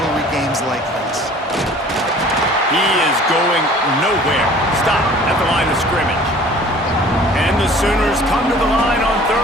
games like this. He is going nowhere. Stop at the line of scrimmage. And the Sooners come to the line on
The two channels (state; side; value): normal; both; correlation 0.49